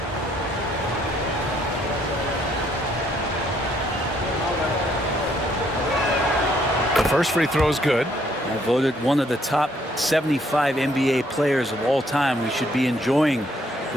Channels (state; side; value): normal; both; correlation 0.68